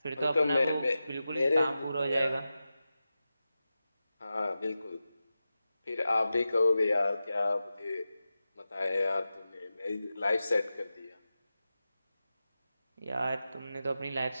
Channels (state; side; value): inverted; both; correlation -0.93